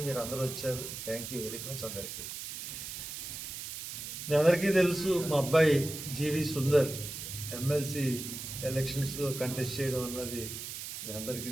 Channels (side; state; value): right; noise; hiss, 8 dB below the sound